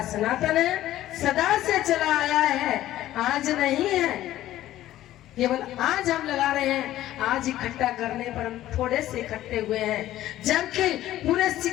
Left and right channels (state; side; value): quieter; right; 14.0 dB